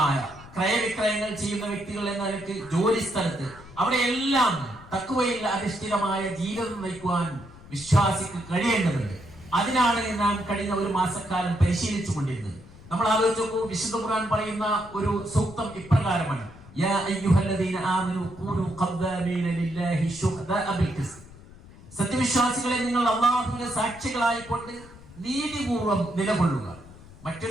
ക്രയവിക്രയങ്ങൾ ചെയ്യുന്ന വ്യക്തികൾ എന്ന നിലക്ക്, ജോലി സ്ഥലത്ത്, അവിടെയെല്ലാം തഖ്വയിൽ അധിഷ്ഠിതമായ ജീവിതം നയിക്കുവാൻ വിശ്വാസിക്ക് കഴിയേണ്ടതുണ്ട്. അതിനാണ് നാം കഴിഞ്ഞ ഒരു മാസക്കാലം പരിശീലിച്ചു കൊണ്ടിരുന്നത്. നമ്മൾ ആലോചിച്ച് നോക്കൂ, വിശുദ്ധ ഖുർആൻ പറയുന്ന ഒരു സൂക്തം ഇപ്രകാരമാണ്: യാ അയ്യുഹല്ലദീന ആമനൂ കൂനൂ ഖദ്ദാമീന ലില്ലാഹി ശുഹദാഅ ബിൽ ഖിസ്ത്. സത്യവിശ്വാസികളെ, നിങ്ങൾ അല്ലാഹുവിന്റെ സാക്ഷികളായിക്കൊണ്ട് നീതിപൂർവം നിലകൊള്ളുക.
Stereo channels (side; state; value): left; noise; rumble, 20 dB below the sound